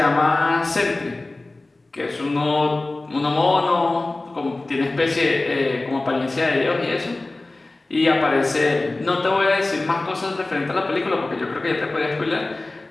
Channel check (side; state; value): right; quieter; 3.0 dB